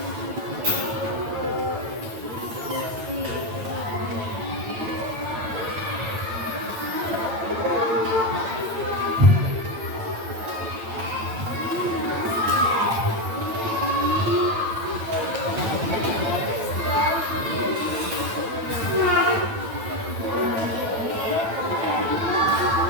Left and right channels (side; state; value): left; late; 9.0 ms